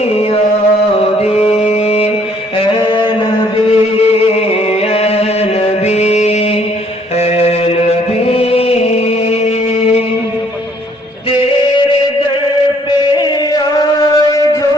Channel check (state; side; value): normal; both; correlation 0.64